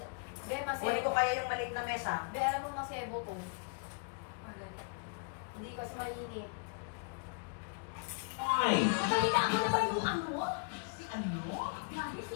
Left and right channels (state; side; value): quieter; right; 33.0 dB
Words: Be, masebo. Kunin ko kaya yung maliit na mesa. Be, alam mo masebo to. Hindi kasi mainit. Ay! Magalitaan mo na ba yung ano? Si ano? Grabe